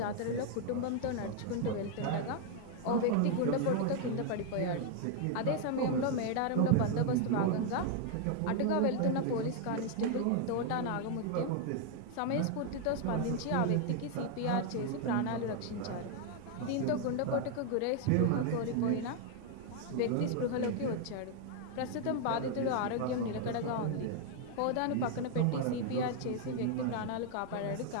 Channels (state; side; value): different; both; correlation 0.00